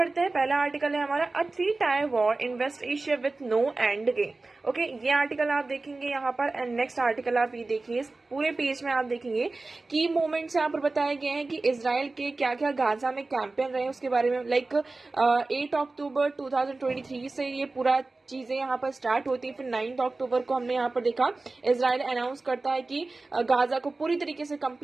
हैं. पहला आर्टिकल है हमारा a 3-tier war in West Asia with no end game. Okay ये आर्टिकल आप देखेंगे यहाँ पर. एंड नेक्स्ट आर्टिकल आप ये देखिए, इस पूरे पेज में आप देखेंगे की मोमेंट्स यहाँ पर बताए गए हैं कि इजराइल के क्या क्या गाजा में कैंपेन रहे उसके बारे में. लाइक 8 अक्टूबर 2023 से ये पूरा चीजें यहाँ पर स्टार्ट होती है. फिर 9 अक्टूबर को हमने यहाँ पर देखा इजराइल अनाउंस करता है कि गाजा को पूरी तरीके से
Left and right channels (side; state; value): left; quieter; 3.4 dB